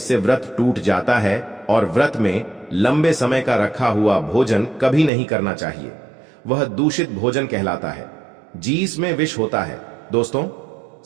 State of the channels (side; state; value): left; drops out; at 5.1 s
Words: व्रत टूट जाता है। और व्रत में लंबे समय का रखा हुआ भोजन कभी नहीं करना चाहिए, वह दूषित भोजन कहलाता है। जीस में विष होता है। दोस्तों,